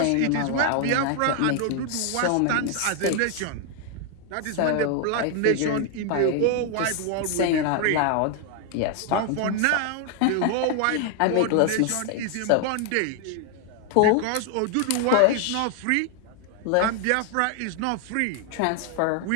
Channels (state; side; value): different; both; correlation 0.00